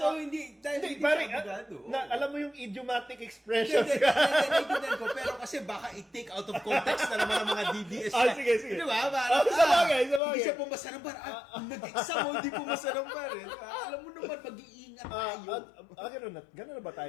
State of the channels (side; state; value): right; drops out; at 10.2 s